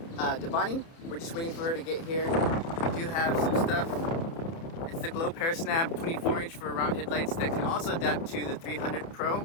We're just waiting for her to get here. We do have some stuff. It's the Glow Pair Snap 24-inch for round headlights that can also adapt to the 300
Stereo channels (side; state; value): right; late; 30 ms